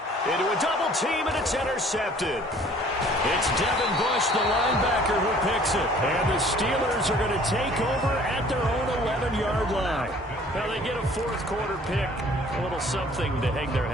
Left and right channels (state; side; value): normal; both; correlation 0.54